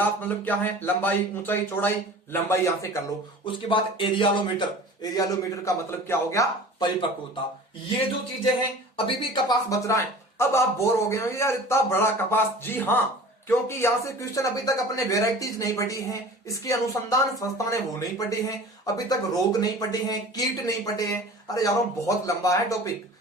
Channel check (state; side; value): normal; both; correlation 0.41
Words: मतलब क्या है, लंबाई, ऊंचाई, चौड़ाई, लंबाई यहां से कर लो। उसके बाद एरियालोमीटर, एरियालोमीटर का मतलब क्या हो गया, परिपक्वता। ये जो चीजें हैं, अभी भी कपास बच रहा है। अब आप बोर हो गए हो यार इतना बड़ा कपास, जी हाँ, क्योंकि यहां से क्वेश्चन अभी तक अपने वेराइटीज नहीं पढ़ी हैं, इसकी अनुसंधान संस्था ने वो नहीं पढ़ी हैं, अभी तक रोग नहीं पढ़े हैं, कीट नहीं पढ़े हैं। अरे यारों बहुत लंबा है टॉपिक,